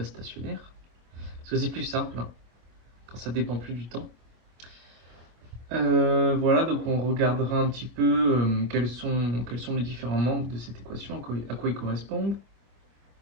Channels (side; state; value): left; late; 25 ms